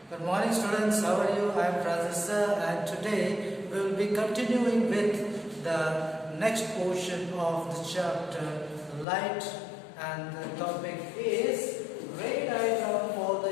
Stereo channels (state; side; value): drops out; right; at 9.1 s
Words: Good morning students, how are you? I am Professor and today we will be continuing with the next portion of the chapter light, and the topic is ray diagram for